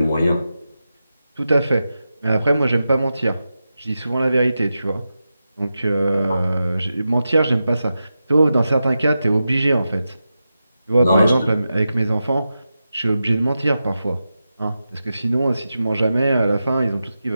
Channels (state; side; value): inverted; both; correlation -0.91